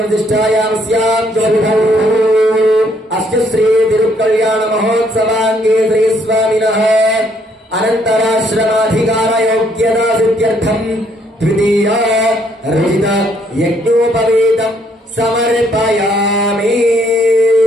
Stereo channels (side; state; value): both; normal; correlation 0.68